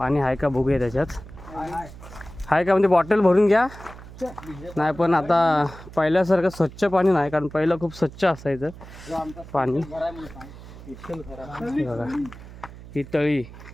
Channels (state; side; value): noise; right; hum, 16 dB below the sound